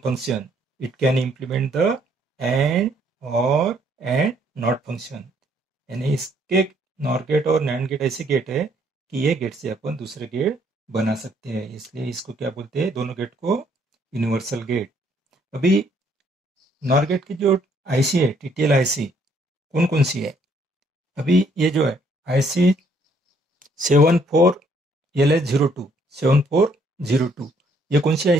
function. It can implement the AND OR and NOT function, यानी इसके नॉर गेट और नैंड गेट ऐसे गेट है कि ये गेट से अपन दूसरे गेट बना सकते हैं, इसलिए इसको क्या बोलते हैं, दोनों गेट को यूनिवर्सल गेट। अभी नॉर गेट की जो आईसी है, टीटीएल आईसी कौन कौन सी है? अभी ये जो है आईसी 74LS02 7402 ये कौन सी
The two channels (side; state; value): both; normal; correlation 0.67